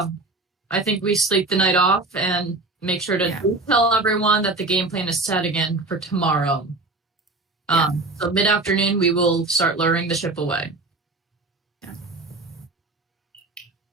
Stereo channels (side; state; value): left; quieter; 3.2 dB